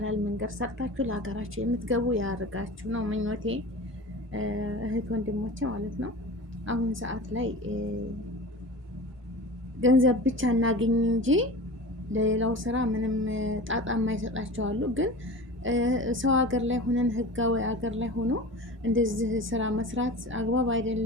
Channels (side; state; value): both; normal; correlation 0.35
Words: መንገድ ሰርታችሁ ለሀገራችሁ የምትገቡ ያርጋችሁ ነው ምኞቴ። እህት ወንድሞቼ ማለት ነው። አሁን ሰዓት ላይ ገንዘብ ብቻ እናገኝ እንጂ ለሌላው ስራ ምንም ጣጣ የማይሰጣቸው አሉ። ግን ሰው ሀገር ላይ ሆነን ህጋዊ ሀገር ላይ ሆኖ እንደዚህ ስራ መስራት አግባብ